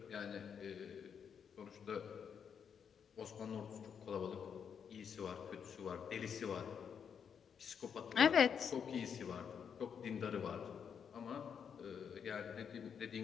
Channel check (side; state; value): right; quieter; 7.3 dB